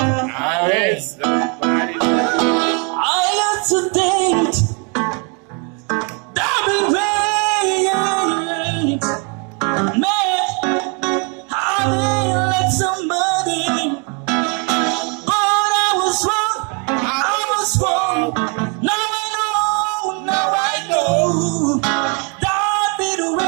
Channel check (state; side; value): quieter; left; 35.5 dB